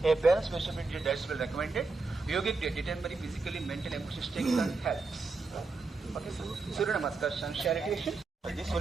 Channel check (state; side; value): quieter; left; 3.9 dB